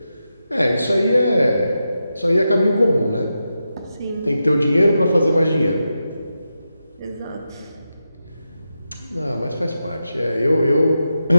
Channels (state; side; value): inverted; both; correlation -0.89